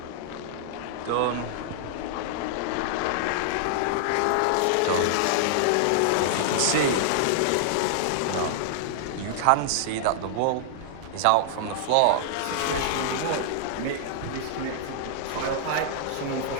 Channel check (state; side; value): different; both; correlation -0.01